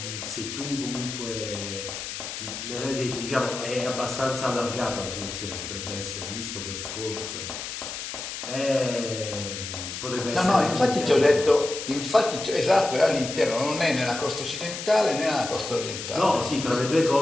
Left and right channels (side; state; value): left; noise; hiss, 7 dB below the sound